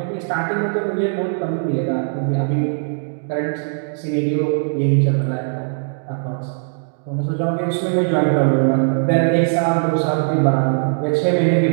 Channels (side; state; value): left; silent; digital silence